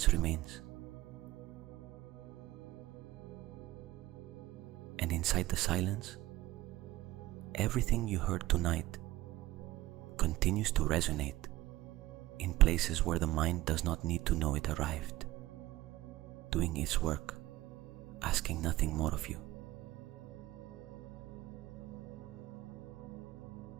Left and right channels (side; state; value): left; quieter; 17.1 dB